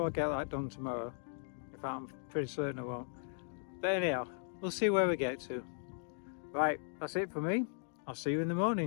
I'll get that done tomorrow. In fact, I'm pretty certain I won't. But anyhow, we'll see where we get to. Right, that's it for me. I'll see you in the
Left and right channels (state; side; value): silent; right; digital silence